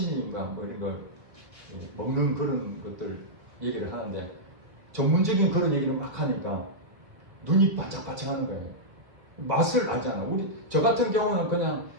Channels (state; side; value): late; left; 1.7 ms